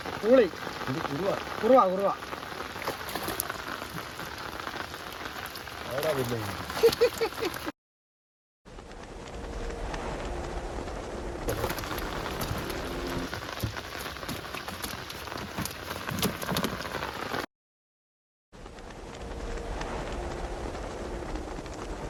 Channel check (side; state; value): both; identical; correlation 1.00